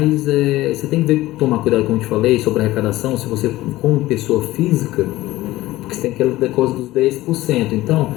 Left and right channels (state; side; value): quieter; right; 17.0 dB